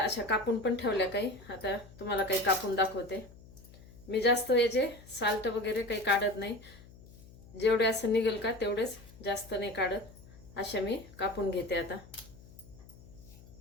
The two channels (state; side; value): noise; left; hum, 21 dB below the sound